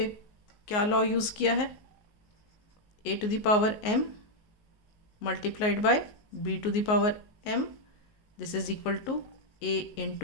क्या law use किया है? a to the power m multiplied by b to the power m. This is equal to a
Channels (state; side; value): late; right; 19 ms